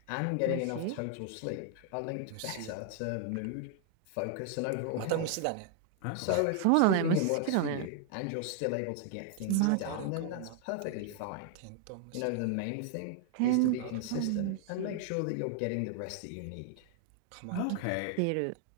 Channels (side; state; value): both; different; correlation 0.00